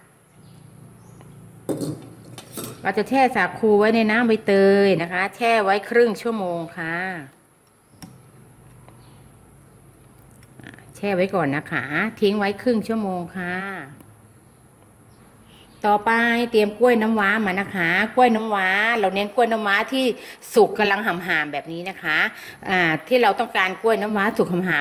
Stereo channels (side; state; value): both; identical; correlation 1.00